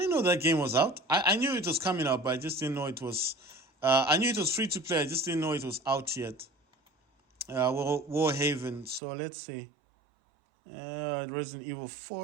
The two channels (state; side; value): drops out; left; at 9.0 s